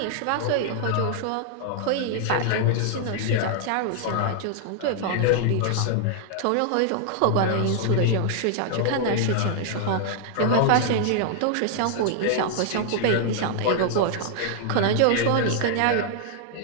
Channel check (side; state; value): both; different; correlation -0.01